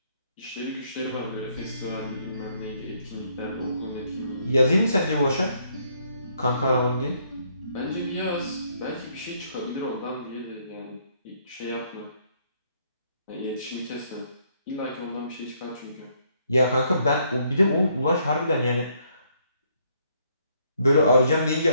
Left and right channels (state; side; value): inverted; both; correlation -0.69